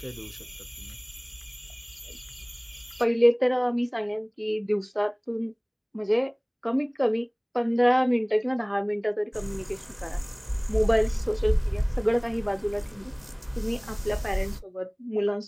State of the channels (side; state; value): both; identical; correlation 1.00